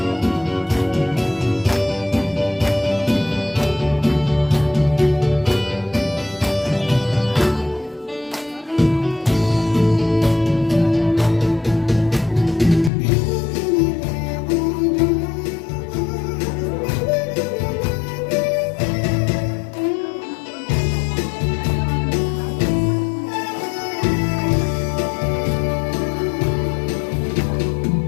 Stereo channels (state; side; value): drops out; right; at 12.9 s